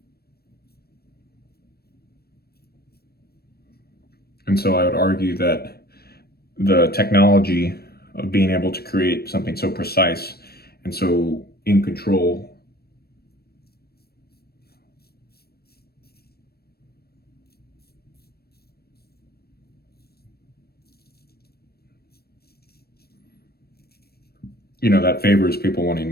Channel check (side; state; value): right; late; 0.46 ms